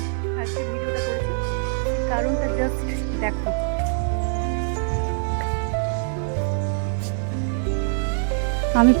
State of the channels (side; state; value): left; silent; 63 dB below the other